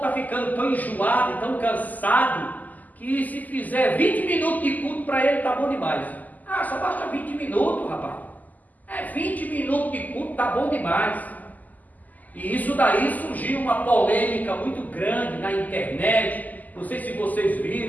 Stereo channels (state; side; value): late; right; 0.081 ms